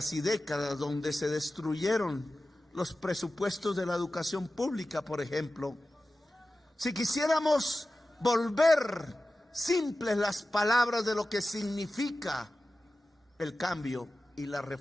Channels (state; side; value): normal; both; correlation 0.95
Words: y décadas, donde se destruyeron los presupuestos de la educación pública, por ejemplo, si quisiéramos volver simples las palabras de lo que significa el cambio y las